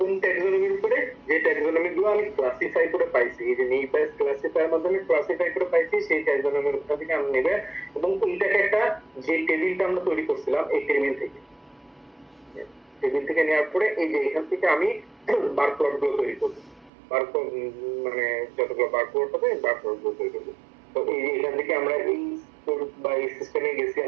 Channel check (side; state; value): left; drops out; at 16.9 s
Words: ট্যাক্সোনমির উপরে, যে ট্যাক্সোনমি গুলো আমি ক্লাসিফাই করে পাইছি, এই যে নেই বেস ক্লাসিফায়ার মাধ্যমে ক্লাসিফাই করে পাইছি সেই ট্যাক্সোনমির উপর থেকে আমি নেবে। এবং এইটাকে একটা যে টেবিলটা আমরা তৈরি করছিলাম এই টেবিল থেকে নেওয়ার পরে এই যে এখান থেকে আমি বার প্লট গুলো তৈরি করবো। বার মানে যতগুলো বার প্লট হবে বার প্লট গুলো তৈরি করবো। তো এই যে এখান থেকে আমরা এই বা এই সিস্টেমে গেছি,